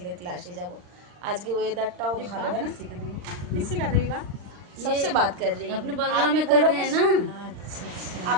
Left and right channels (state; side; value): late; left; 39 ms